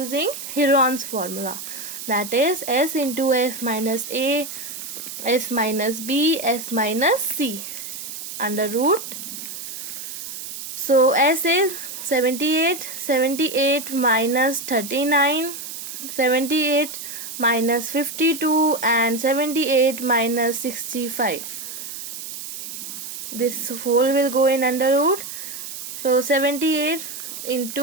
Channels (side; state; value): right; noise; hiss, 9 dB below the sound